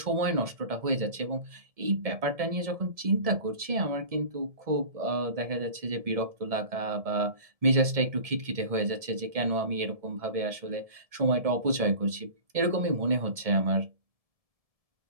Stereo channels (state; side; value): late; left; 1.7 ms